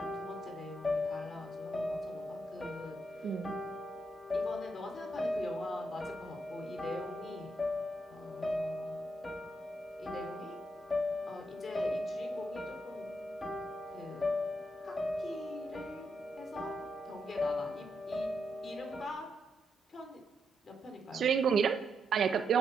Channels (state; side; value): normal; both; correlation 0.81